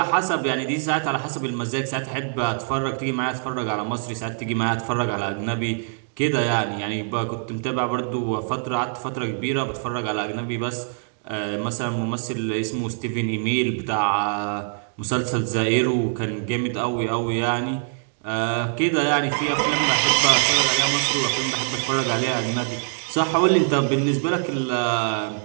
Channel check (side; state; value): left; silent; digital silence